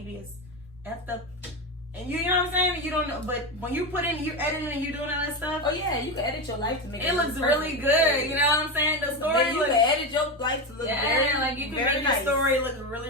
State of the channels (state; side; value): normal; both; correlation 0.16